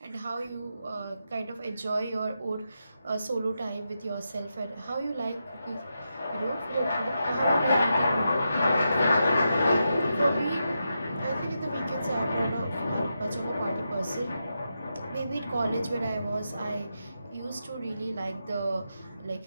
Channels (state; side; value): inverted; both; correlation -0.86